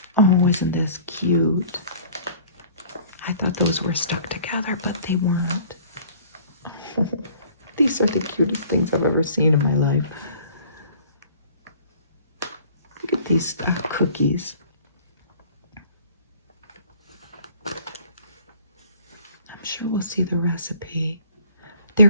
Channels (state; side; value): inverted; both; correlation -0.51